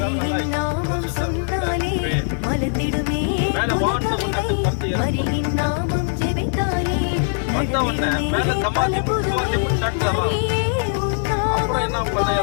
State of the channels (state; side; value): silent; right; digital silence